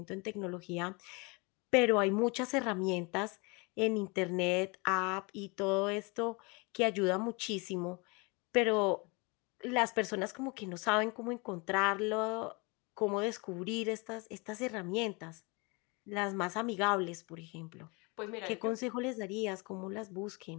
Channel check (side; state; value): right; quieter; 28.7 dB